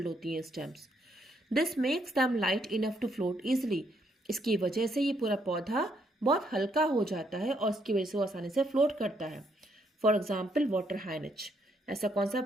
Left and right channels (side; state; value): both; normal; correlation 0.73